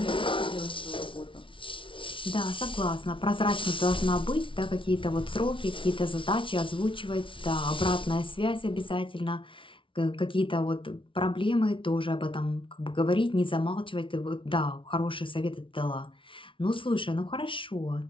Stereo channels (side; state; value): right; late; 0.25 ms